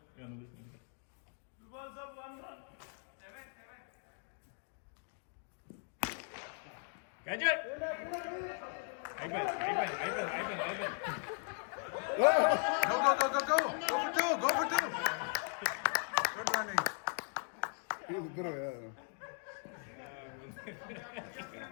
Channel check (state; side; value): silent; right; 52 dB below the other